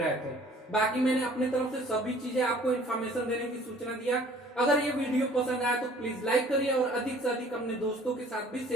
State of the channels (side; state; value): both; normal; correlation 0.53